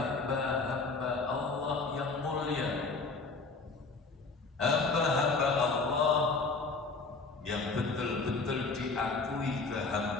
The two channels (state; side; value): quieter; right; 4.0 dB